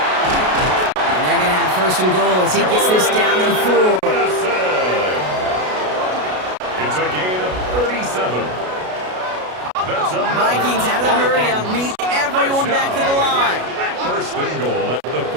And they're going to have 1st and goal as he gets this down to the 4. It's a gain of 37. That's a Vikings out of the hurry up, need everyone back to the line. 1st and goal at the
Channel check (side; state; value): left; late; 33 ms